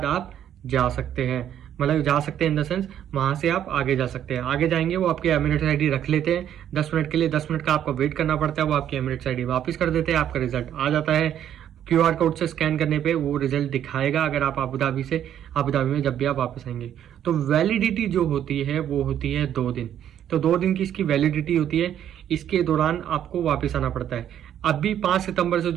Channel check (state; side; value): quieter; left; 10.3 dB